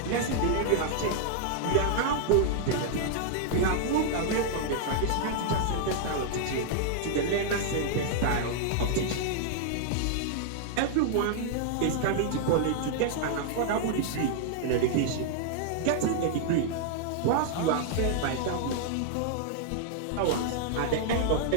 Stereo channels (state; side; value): different; both; correlation -0.01